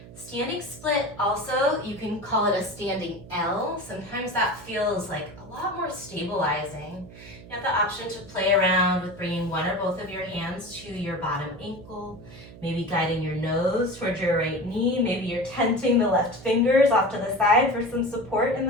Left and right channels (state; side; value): noise; right; hum, 17 dB below the sound